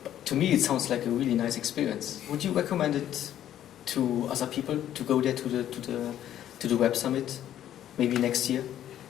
to me, it sounds like a really nice experience. Would you recommend it to other people to go there to the Web Summit, maybe next year?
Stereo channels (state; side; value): quieter; right; 11.4 dB